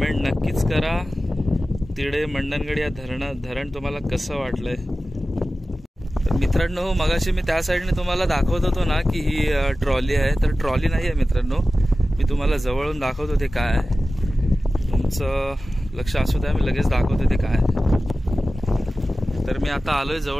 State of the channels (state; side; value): normal; both; correlation 0.95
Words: नक्कीच करा, तिडे मंडणगड या धरण तुम्हाला कसं वाटलंय. तर मित्रांनो, मगाशी मी त्या साईडने तुम्हाला दाखवत होतो ना की ही ट्रॉली आहे. तर ट्रॉली नाही आहे मित्रांनो, मी तुम्हाला जवळून दाखवतो ते काय आहे. तुमचं लक्ष असू द्या, मी लगेच दाखवतो ते काय आहे. तर मी आता आलोय